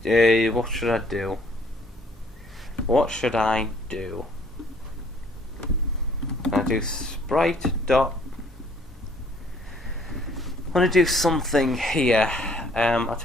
what should I do? what should I do? I do sprite dot. I want to do something here. I'll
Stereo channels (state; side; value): normal; both; correlation 0.60